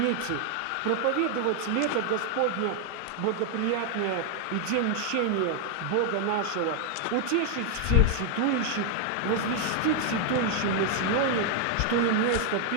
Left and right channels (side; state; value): both; different; correlation 0.00